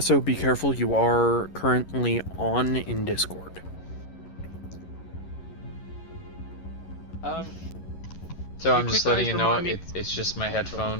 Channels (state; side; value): late; right; 11 ms